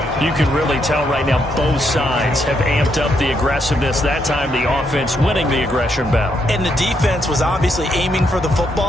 You can really tell right now both sides have amped up the aggressiveness. That time the offense winning the aggression battle. And the defense was obviously aiming for the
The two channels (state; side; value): normal; both; correlation 0.77